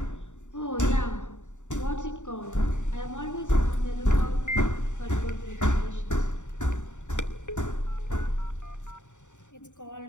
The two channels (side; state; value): right; late; 0.85 ms